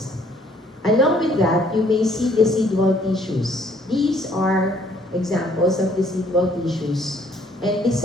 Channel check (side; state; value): both; normal; correlation 0.62